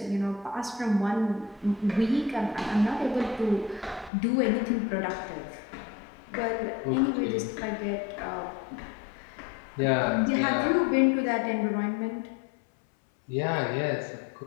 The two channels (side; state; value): right; drops out; at 4.1 s